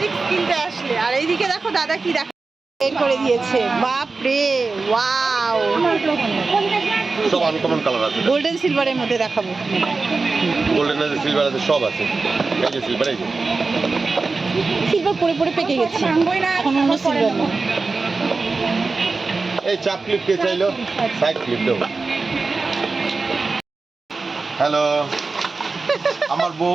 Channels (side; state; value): left; quieter; 4.0 dB